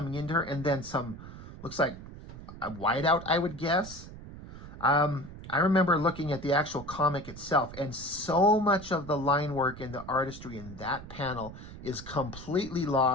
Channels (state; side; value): noise; right; rumble, 14 dB below the sound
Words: into her, and then some, looks like a whiteout, I would guess. I remember looking at the actual comic itself, and so much of the line work and the artistry in that panel is completely